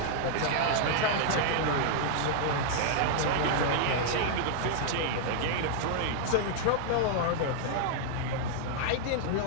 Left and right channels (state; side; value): different; both; correlation -0.01